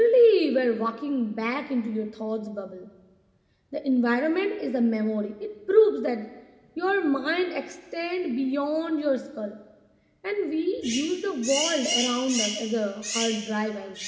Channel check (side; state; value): both; identical; correlation 1.00